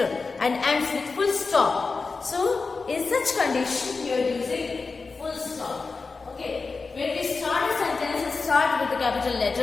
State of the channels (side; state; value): right; quieter; 4.3 dB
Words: and ends with full stop. So, in such condition, you are using full stop. Okay, when we start a sentence, start with the capital